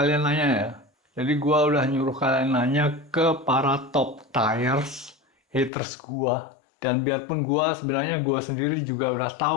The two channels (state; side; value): drops out; right; at 5.7 s